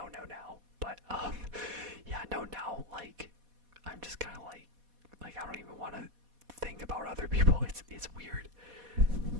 now. But yeah, no, now like I'm just kind of like I don't even want to think about other people. It's weird.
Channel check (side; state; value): left; late; 4.1 ms